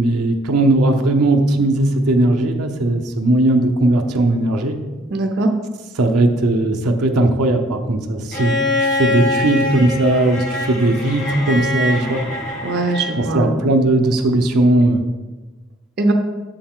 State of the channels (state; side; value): normal; both; correlation 0.61